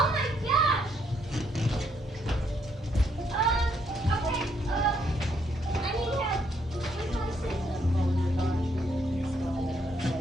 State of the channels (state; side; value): normal; both; correlation 0.72